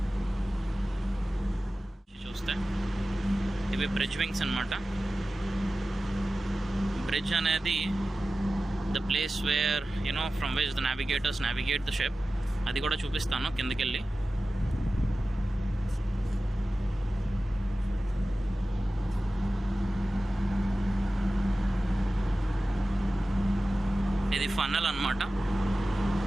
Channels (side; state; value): both; normal; correlation 0.95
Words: చూస్తే ఇవి బ్రిడ్జ్ వింగ్స్ అనమాట. బ్రిడ్జ్ అనేది the place where from which the navigators navigate the ship. అది కూడా చూపిస్తాను కిందకెళ్ళి. ఇది ఫన్నల్ అనమాట.